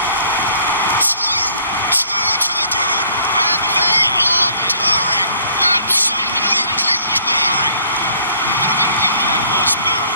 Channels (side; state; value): both; inverted; correlation -0.58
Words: Two to the good, and they are purring. Absolutely purring. There was no